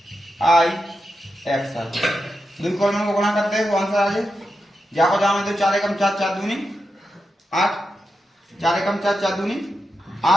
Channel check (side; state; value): both; normal; correlation 0.88